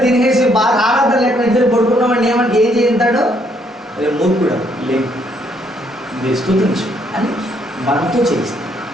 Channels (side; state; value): both; normal; correlation 0.70